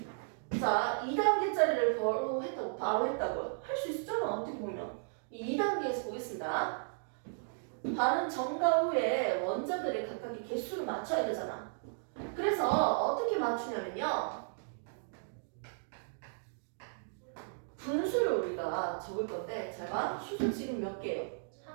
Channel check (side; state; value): left; silent; digital silence